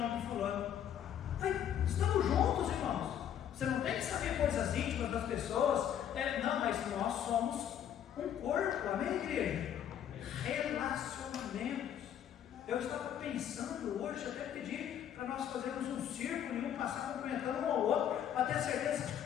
de fulano. Aí, estamos juntos, irmãos. Você não tem que saber coisas íntimas das pessoas, não, mas nós somos um corpo, amém, igreja? Relacionamentos. Eu estava pensando hoje, até pedi para nós fazermos um círculo e um passar cumprimentando um ao outro, para ter certeza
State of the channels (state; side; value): quieter; right; 9.8 dB